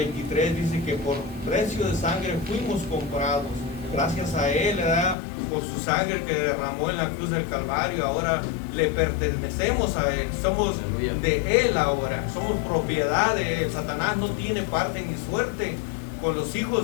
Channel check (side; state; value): right; drops out; at 5.2 s